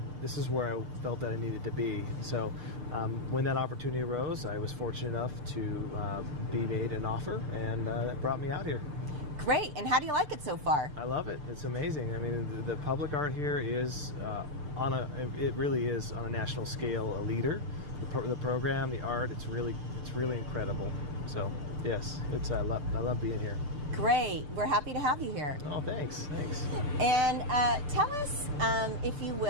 where I felt that I needed to be. So when that opportunity arose, I was fortunate enough to be made an offer, and that brought me out here. Great, and how do you like it so far? I love it. It's amazing. I mean, the public art here is it really is on a national scale a leader. The program, the art, it's really incredible. So yes, I love being here. Great, we're happy to have you here. Oh, thanks. And tell us, if you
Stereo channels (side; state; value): left; late; 6.7 ms